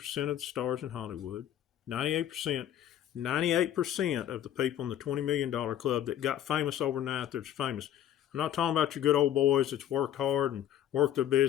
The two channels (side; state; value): right; quieter; 11.3 dB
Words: of the stars in Hollywood, 98% of the people in the $20 million club that got famous overnight that's famous. I'm not talking about your good old boys that's worked hard and worked their